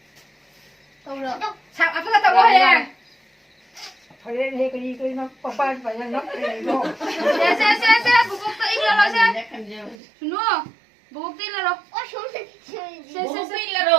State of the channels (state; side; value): drops out; left; at 10.0 s